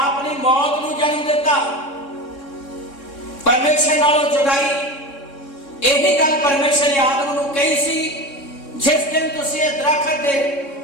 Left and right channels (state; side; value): late; right; 3.6 ms